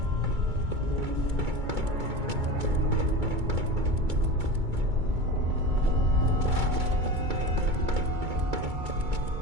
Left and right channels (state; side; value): late; left; 2.2 ms